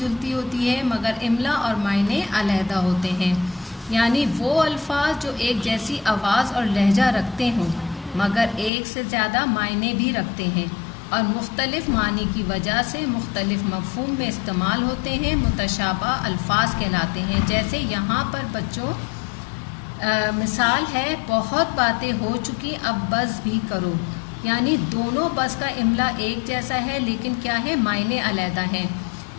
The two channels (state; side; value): drops out; right; at 8.7 s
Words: ہوتی ہے مگر املا اور معنی علیحدہ ہوتے ہیں. یعنی وہ الفاظ جو ایک جیسی آواز اور لہجہ رکھتے ہوں مگر ایک سے زیادہ معنی بھی رکھتے ہیں اور مختلف معنی کی وجہ سے مختلف مفہوم میں استعمال ہوتے ہیں، متشابہ الفاظ کہلاتے ہیں. جیسے یہاں پر بچوں مثال ہے، بہت باتیں ہو چکی اب بس بھی کرو، یعنی دونوں بس کا املا ایک جیسا ہے لیکن کیا ہے معنی علیحدہ ہیں.